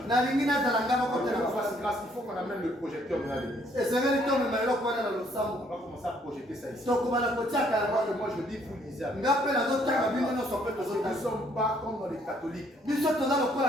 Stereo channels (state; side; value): normal; both; correlation 0.65